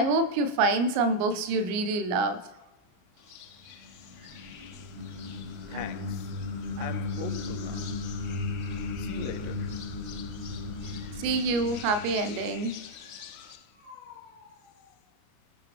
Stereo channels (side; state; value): left; late; 34 ms